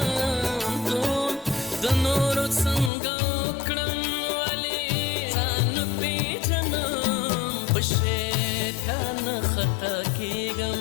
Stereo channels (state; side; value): drops out; right; at 2.9 s